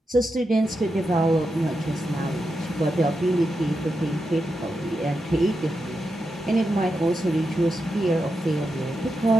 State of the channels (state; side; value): normal; both; correlation 0.87